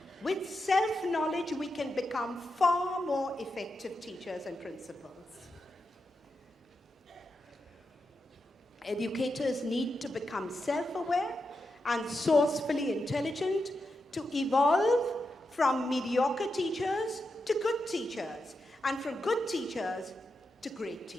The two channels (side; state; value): both; normal; correlation 0.87